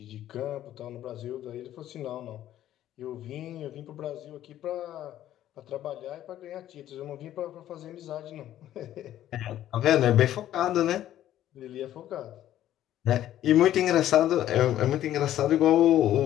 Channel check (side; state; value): right; quieter; 12.4 dB